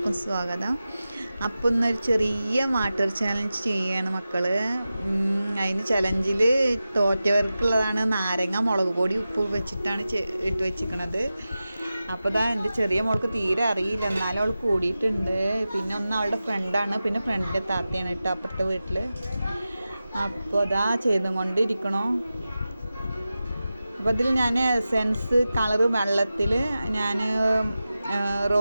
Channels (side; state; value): both; inverted; correlation -0.94